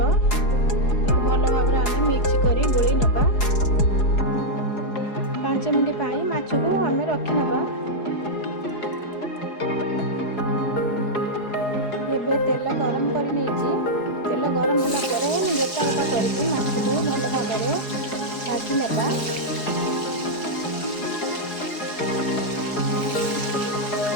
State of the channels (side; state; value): right; late; 4.8 ms